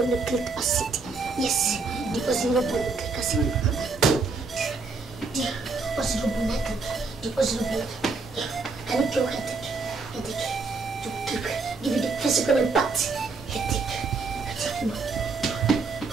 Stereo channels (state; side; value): quieter; left; 4.2 dB